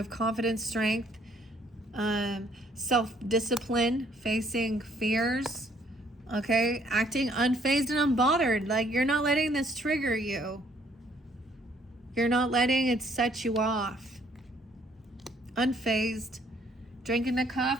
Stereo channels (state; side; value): normal; both; correlation 0.64